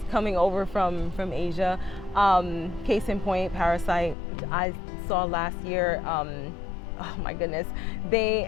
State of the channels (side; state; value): right; drops out; at 4.2 s